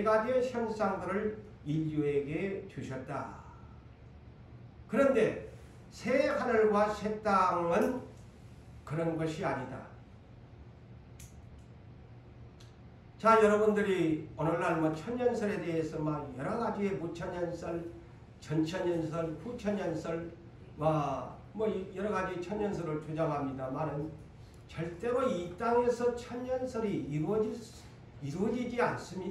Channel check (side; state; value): both; identical; correlation 1.00